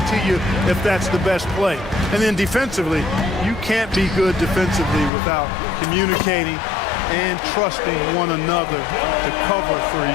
to you if that's the best play. And then defensively, you can't be good defensively without communicating and trusting one another to cover for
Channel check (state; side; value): drops out; right; at 5.1 s